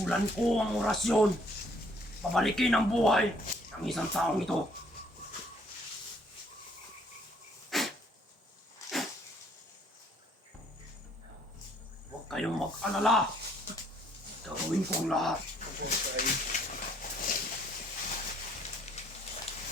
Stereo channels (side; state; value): both; normal; correlation 0.64